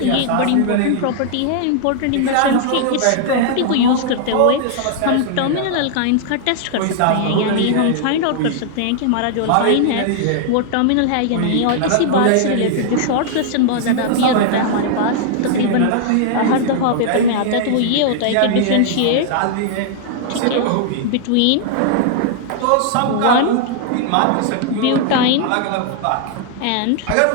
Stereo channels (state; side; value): different; both; correlation -0.01